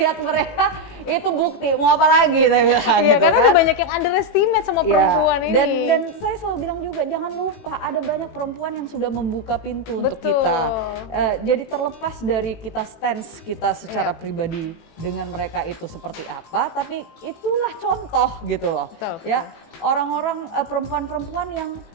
mereka, itu bukti, mau apa lagi saya bilang gitu karena kan. ada banyak yang underestimate sama perempuan ini. Dan saya selalu bilang juga jangan lupa ada banyak perempuan yang sudah membuka pintu untuk kita. Jadi terlepas dari kita stance kita secara pribadi dengan mereka itu seperti apa, tapi itulah contoh gitu loh. Ya, orang-orang perempuan-perempuan yang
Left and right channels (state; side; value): late; right; 18 ms